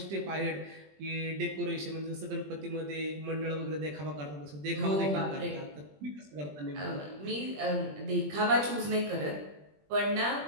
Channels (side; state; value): left; late; 20 ms